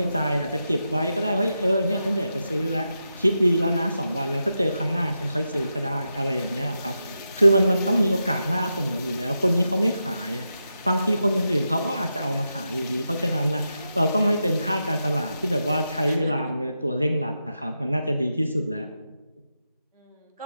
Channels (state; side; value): inverted; both; correlation -0.88